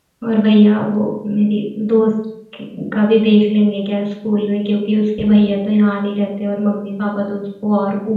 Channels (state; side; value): identical; both; correlation 1.00